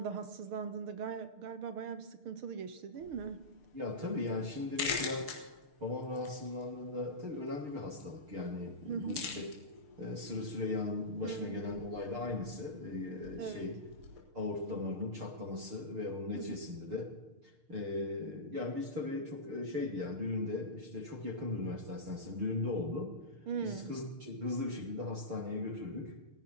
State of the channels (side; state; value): left; late; 6.6 ms